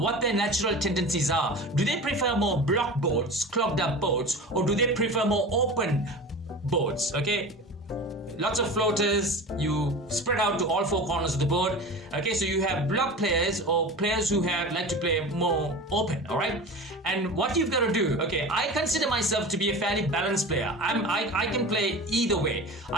their natural tendencies are. Do they prefer more block boards, clogged up boards, or do they prefer more open boards? Okay. Lots of floaters, you spread out to all 4 corners of the board. Okay, so you have block players or players who like to play more open, alright? And what you've got to do, okay, I consider myself to be a fairly balanced player. I can play either way.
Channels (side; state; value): both; normal; correlation 0.33